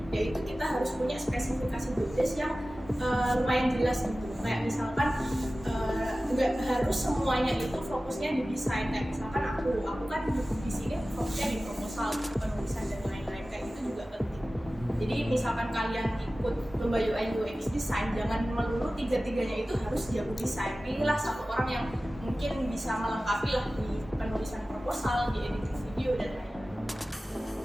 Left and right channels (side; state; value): both; normal; correlation 0.96